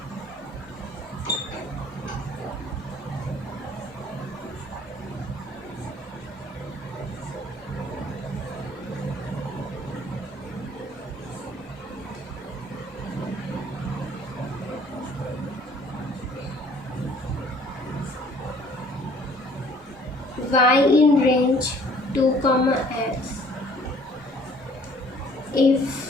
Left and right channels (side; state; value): both; normal; correlation 0.56